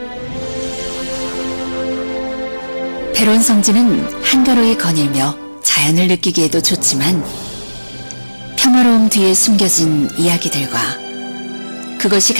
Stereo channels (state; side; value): inverted; both; correlation -1.00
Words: 배론 성지는 한가로이 거닐며 자연을 느끼기에도 좋지만 평화로움 뒤에 숨겨진 이야기들과 그것이